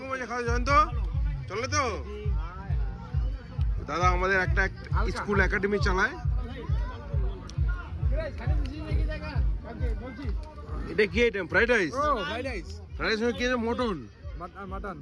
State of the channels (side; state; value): both; identical; correlation 1.00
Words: হয়েছে খাওয়া জয়ন্ত? চলে তো? দাদা আমাদের একটা স্কুল একাডেমি চালায়। এটা কি item? Fried rice? Fried rice সঙ্গে কি আছে? মটন।